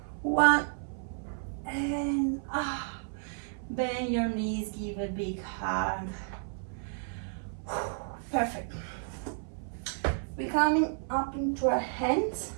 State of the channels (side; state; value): left; silent; 57 dB below the other